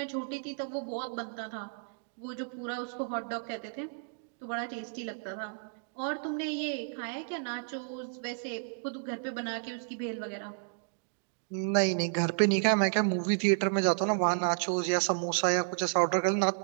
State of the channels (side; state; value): left; silent; digital silence